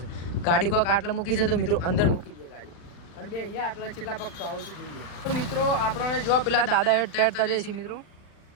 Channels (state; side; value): late; right; 39 ms